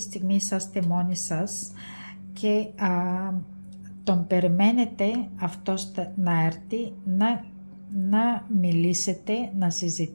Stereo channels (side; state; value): both; inverted; correlation -1.00